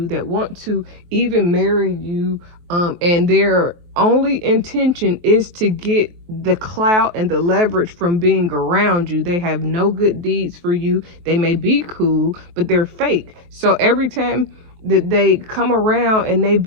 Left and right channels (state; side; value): late; left; 23 ms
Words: that want to even marry you, and their only intention is to get the clout and the leverage from being around you. They have no good deeds for you. They may be cool, but they're fake. So every time that they come around and they